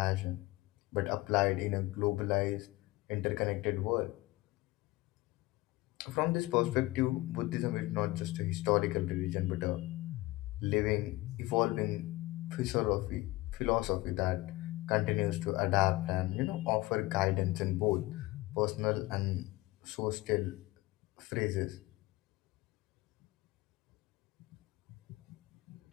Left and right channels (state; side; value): quieter; right; 20.0 dB